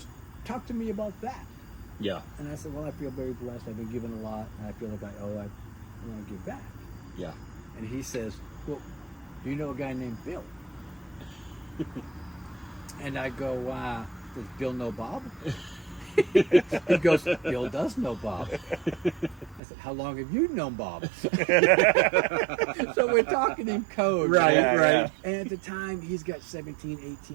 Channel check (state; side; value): drops out; left; at 19.6 s